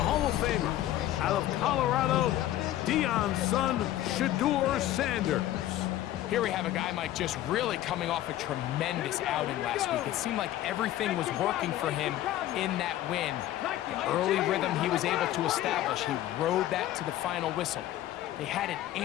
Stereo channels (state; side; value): quieter; right; 13.8 dB